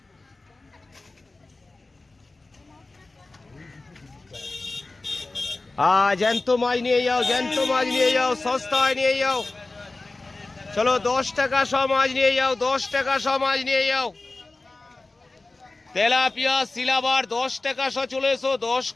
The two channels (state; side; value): quieter; right; 3.2 dB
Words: জ্যান্ত মাছ নিয়ে যাও, জ্যান্ত মাছ নিয়ে যাও, সস্তায় নিয়ে যাও। চলো 10 টাকা শ মাছ নিয়ে যাও, 10 টাকা শ মাছ নিয়ে যাও। তেলাপিয়া সিলাবার 10 টাকা শ চলে এসো, 10